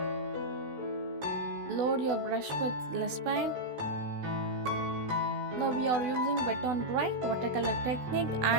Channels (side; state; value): left; late; 16 ms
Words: Load your brush with less paint. Now we are using wet on dry watercolor technique